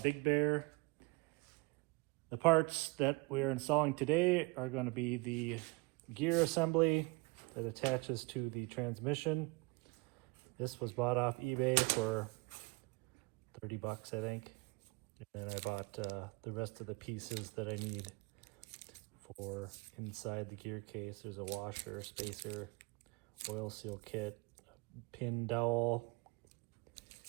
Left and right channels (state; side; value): quieter; left; 25.5 dB